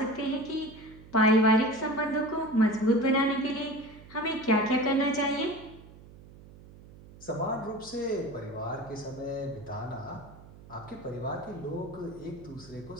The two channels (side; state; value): right; noise; hum, 20 dB below the sound